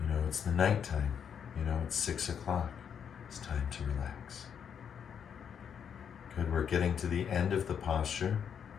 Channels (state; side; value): quieter; right; 7.8 dB